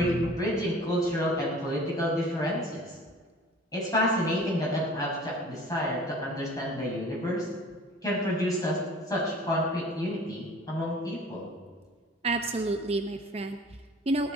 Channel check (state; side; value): normal; both; correlation 0.46